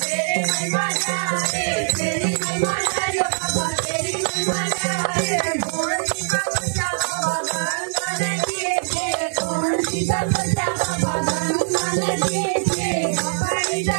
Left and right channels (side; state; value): left; silent; digital silence